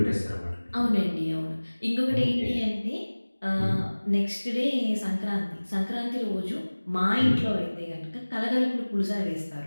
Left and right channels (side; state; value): both; inverted; correlation -1.00